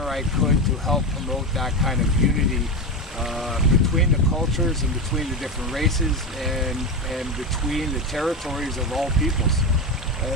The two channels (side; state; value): both; normal; correlation 0.17